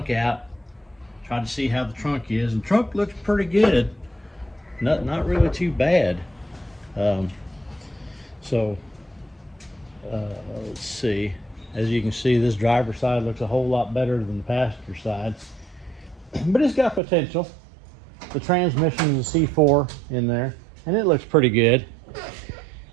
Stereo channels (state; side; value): drops out; left; at 17.0 s